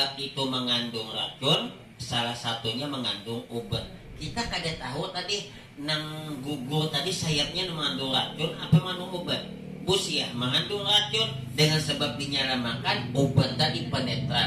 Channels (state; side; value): identical; both; correlation 1.00